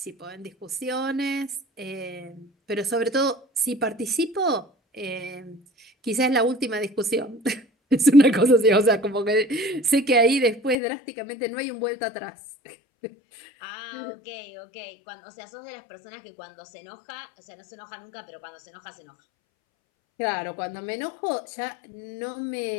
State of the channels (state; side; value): drops out; right; at 10.8 s